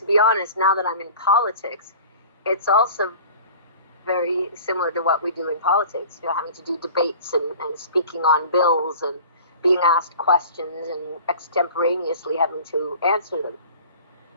be honest, now that I'm in politics, it's also very similar to what we do in politics, having to do debates and speaking on bills and being asked questions and extemporaneously having to answer them.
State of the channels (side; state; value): both; inverted; correlation -0.43